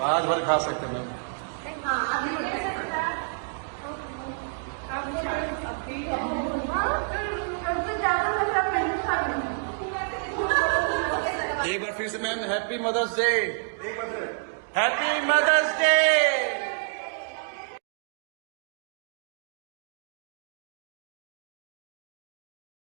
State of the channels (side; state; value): left; silent; digital silence